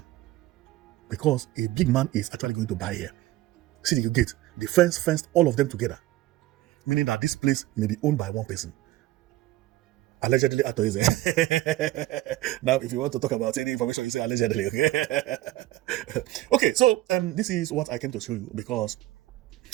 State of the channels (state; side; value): quieter; left; 16.6 dB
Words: because a big man is actually going to buy here. See the gate, the fence fenced all of them together, meaning that this place may be owned by one person. Allegedly, Atoeze. Now, if you want to talk about any information, you say allegedly. Okay. Okay. So this is what I came to show you, because